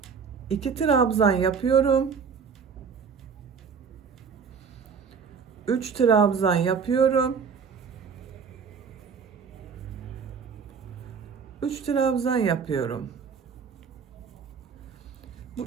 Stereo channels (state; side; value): quieter; left; 6.1 dB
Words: 2 trabzan yapıyorum. 3 trabzan yapıyorum. 3 trabzan yapıyorum. Bu